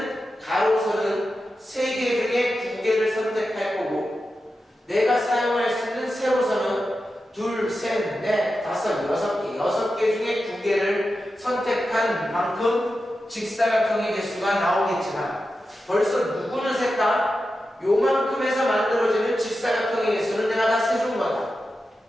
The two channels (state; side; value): normal; both; correlation 0.91